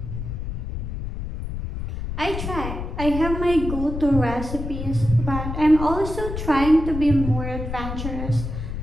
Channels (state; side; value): noise; left; rumble, 6 dB below the sound